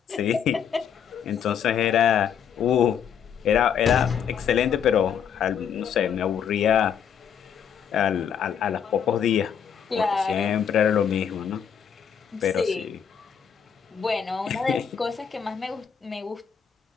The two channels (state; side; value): quieter; right; 7.9 dB